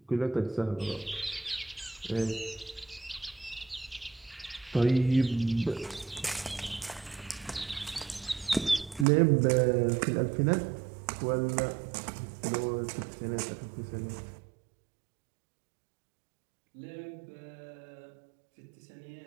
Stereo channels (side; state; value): left; drops out; at 9.1 s